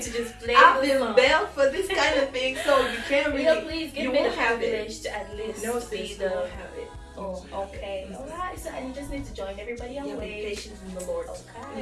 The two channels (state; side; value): identical; both; correlation 1.00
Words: to just play I've the been song. bailed for this kind of thing, so you can't really. You know, please give you me the won't have it. privilege to at least No, be sis, you the. won't have it. Oh, okay. Mhm. Alright, so and you just need to join everybody on Yeah, be wait. patient in the Lord.